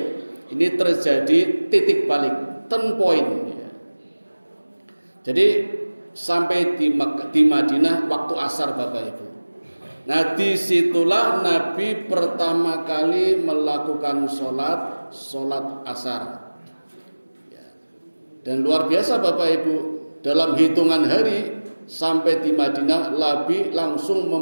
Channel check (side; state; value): both; inverted; correlation -1.00